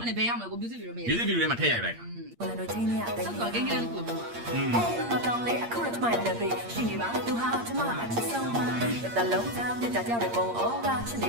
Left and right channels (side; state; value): left; late; 8.6 ms